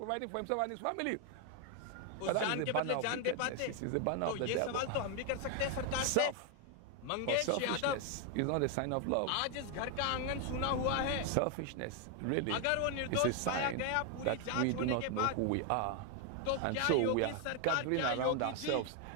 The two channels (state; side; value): different; both; correlation 0.01